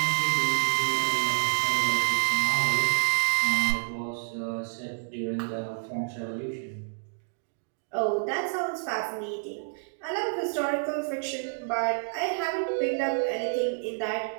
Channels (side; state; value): left; silent; digital silence